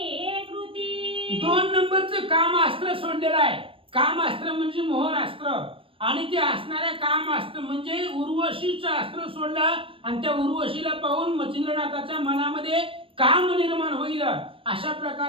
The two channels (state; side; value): late; left; 0.26 ms